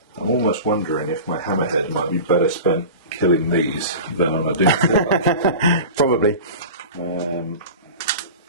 I'm almost wondering if my hammerhead might be better spent killing these than on a doom. Probably.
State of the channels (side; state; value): both; inverted; correlation -0.34